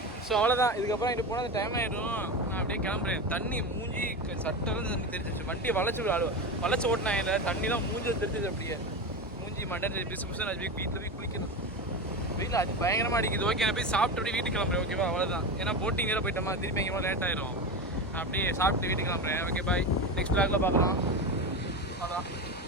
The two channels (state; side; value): normal; both; correlation 0.21